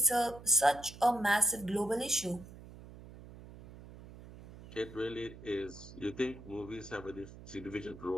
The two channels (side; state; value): right; noise; hum, 17 dB below the sound